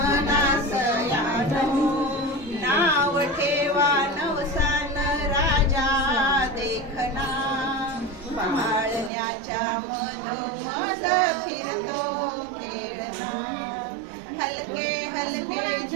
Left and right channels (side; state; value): left; drops out; at 9.1 s